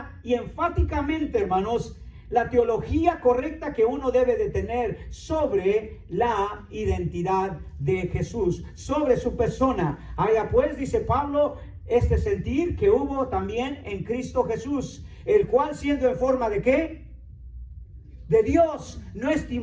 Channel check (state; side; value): identical; both; correlation 1.00